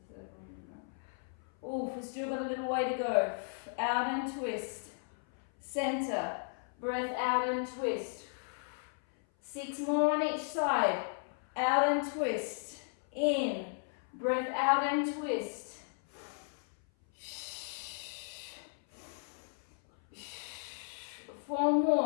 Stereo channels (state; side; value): silent; right; 54 dB below the other